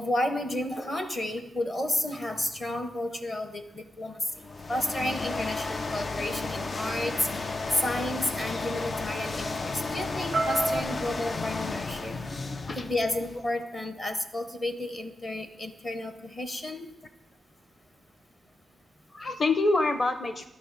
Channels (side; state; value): both; normal; correlation 0.88